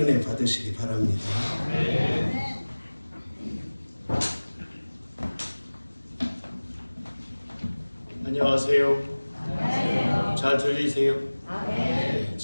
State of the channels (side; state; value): both; inverted; correlation -1.00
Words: 은혜 받으시기 바랍니다. 안녕하세요. 잘 들리세요? 네,